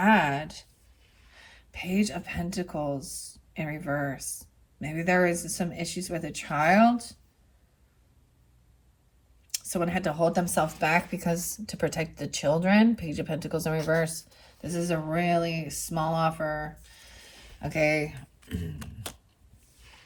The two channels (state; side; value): identical; both; correlation 1.00